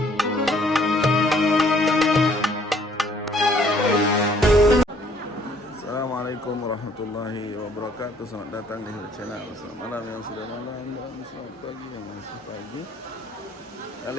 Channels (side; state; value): both; normal; correlation 0.61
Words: Assalamualaikum warahmatullahi wabarakatuh. Selamat datang di channel. Selamat malam yang sudah malam dan selamat pagi yang masih pagi.